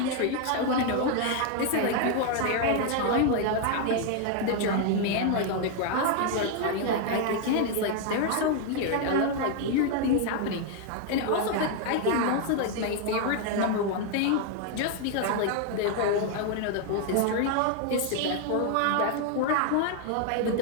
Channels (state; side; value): different; both; correlation 0.00